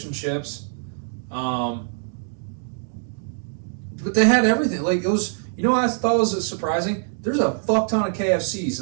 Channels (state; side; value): silent; left; digital silence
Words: and chips. But they had everything. Like, it was. You know what I thought was surprising? There's a fuck ton of KFCs